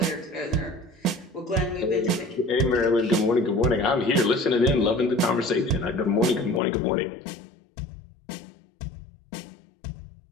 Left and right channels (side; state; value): right; drops out; at 6.6 s